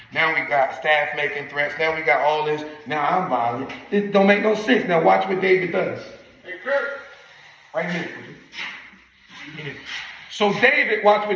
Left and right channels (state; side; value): identical; both; correlation 1.00